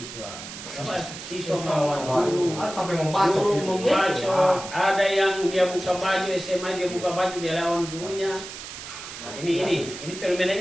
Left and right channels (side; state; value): right; noise; hiss, 11 dB below the sound